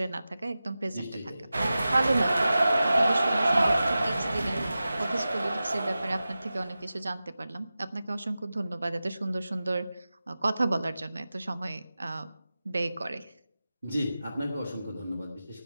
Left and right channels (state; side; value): inverted; both; correlation -0.94